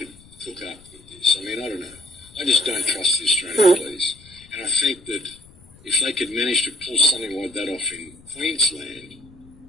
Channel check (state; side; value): noise; left; rumble, 24 dB below the sound